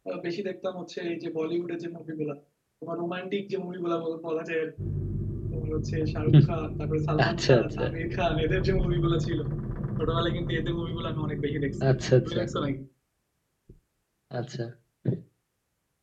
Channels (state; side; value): identical; both; correlation 1.00